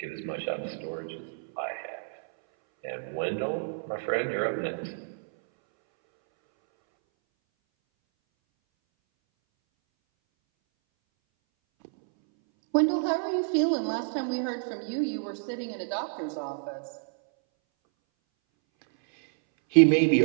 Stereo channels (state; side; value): silent; left; 59 dB below the other